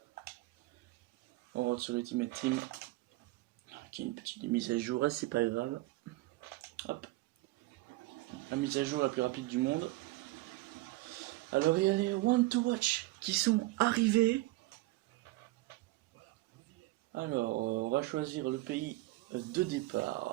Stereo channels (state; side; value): quieter; left; 19.6 dB